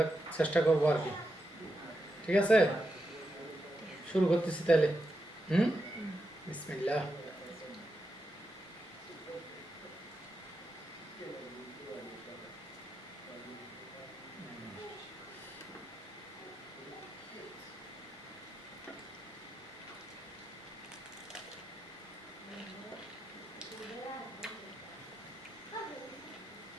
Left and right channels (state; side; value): normal; both; correlation 0.86